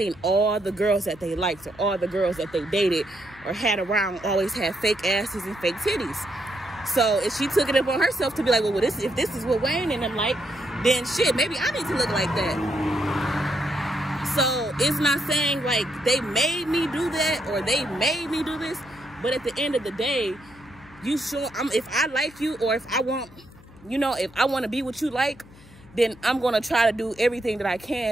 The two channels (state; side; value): noise; left; hum, 23 dB below the sound